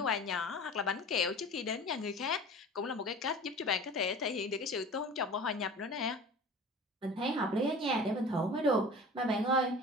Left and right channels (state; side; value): normal; both; correlation 0.39